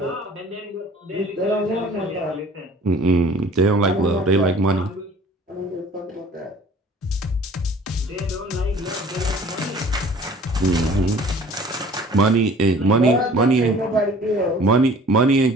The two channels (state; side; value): normal; both; correlation 0.49